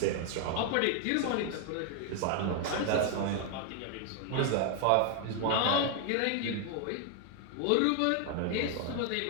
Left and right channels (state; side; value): different; both; correlation 0.00